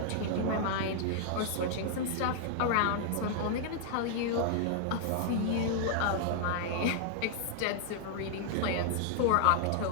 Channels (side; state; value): both; different; correlation -0.01